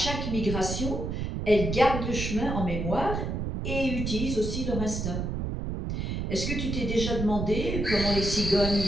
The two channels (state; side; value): noise; right; rumble, 3 dB below the sound